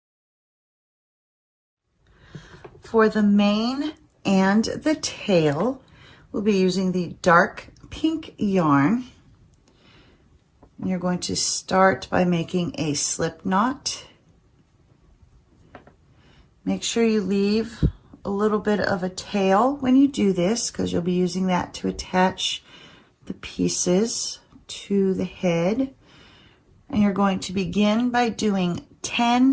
For the mane and the tail, we'll be using the dark pink yarn. You're going to start by making a slip knot. Make sure you leave a little bit of a tail when you do this, because you'll be using that to attach the pieces to the head. And you're going to begin by doing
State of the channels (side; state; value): both; identical; correlation 1.00